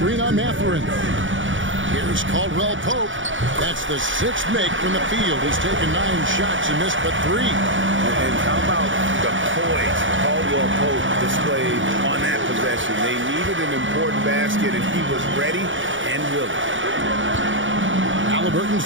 on Matherin. Here's Caldwell Pope. That's the 6th make from the field. He's taken 9 shots and missed but 3. And how about the poise Caldwell Pope displayed on that possession? They needed an important basket, and he was ready and willing. Halliburton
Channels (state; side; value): late; left; 0.56 ms